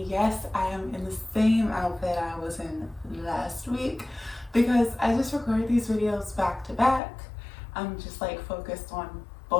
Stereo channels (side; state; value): right; drops out; at 7.0 s